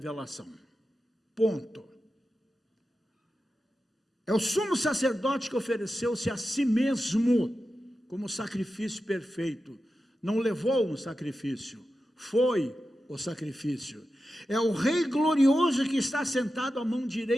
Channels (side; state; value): both; normal; correlation 0.91